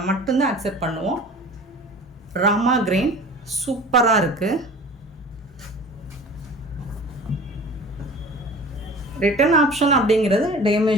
மட்டும்தான் அக்செப்ட் பண்ணுவோம். ராமா கிரீன் சூப்பராக இருக்குது. ரிட்டர்ன் ஆப்ஷன் அப்படிங்கிறது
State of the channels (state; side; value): normal; both; correlation 0.41